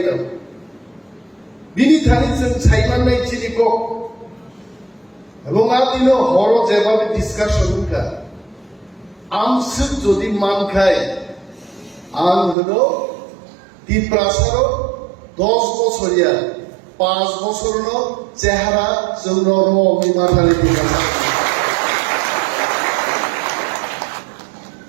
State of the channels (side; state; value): left; drops out; at 12.6 s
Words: বিনি থানিছেন ছাইমান নাই চিনি কক এবং আদিন হর যেভাবে ডিসকাশন কা আমসুক যদি মান খায় আং হলো টিপ্রাসার 10 বছরিয়া 5 বছর চেহারা জৌনর মাথালে